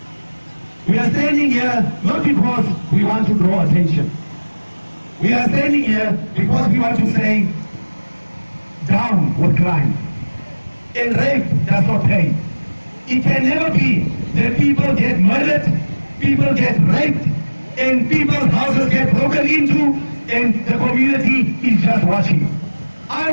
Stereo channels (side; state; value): both; inverted; correlation -1.00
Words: we are standing here not because we want to draw attention. We are standing here because we want to say, down with crime. And rape does not pay. It can never be that people get murdered, people get raped, and people's houses get broken into, and the community is just watching. I